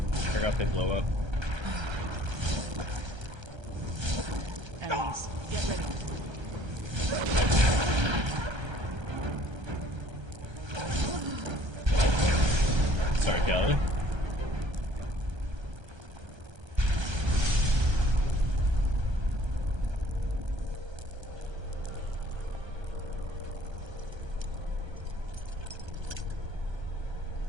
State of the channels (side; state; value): left; late; 1.3 ms